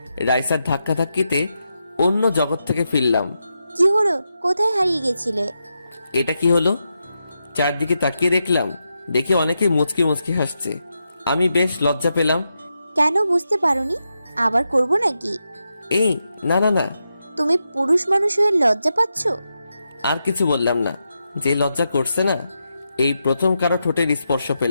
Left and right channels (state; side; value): inverted; both; correlation -0.86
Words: রাইসার ধাক্কা ধাক্কিতে অন্য জগৎ থেকে ফিরলাম। কি হলো? কোথায় হারিয়ে গেছিলে? এটা কি হলো? চারদিকে তাকিয়ে দেখলাম, দেখি অনেকে মুচকি মুচকি হাসছে। আমি বেশ লজ্জা পেলাম। কেন বুঝতে পারোনি? আবার করব নাকি? এই না না না, তুমি পুরুষ মানুষ হয়ে লজ্জা পাচ্ছ? আর কিছু বললাম না। যে লজ্জা করছে না, এই প্রথম কারো ঠোঁটের স্পর্শ